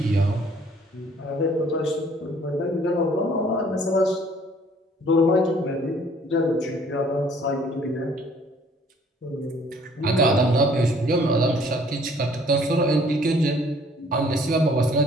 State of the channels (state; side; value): normal; both; correlation 0.58